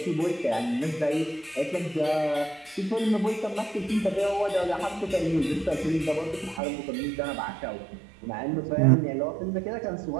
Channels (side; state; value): left; drops out; at 6.6 s